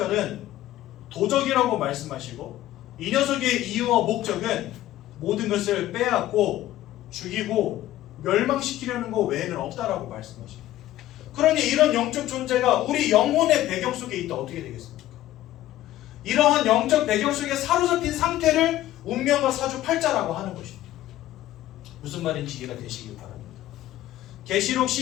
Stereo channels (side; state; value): right; quieter; 14.4 dB